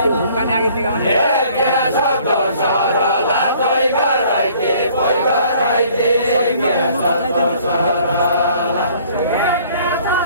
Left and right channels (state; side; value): inverted; both; correlation -0.57